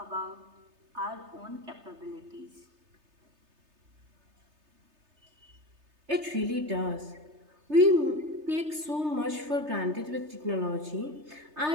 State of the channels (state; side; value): late; left; 3.3 ms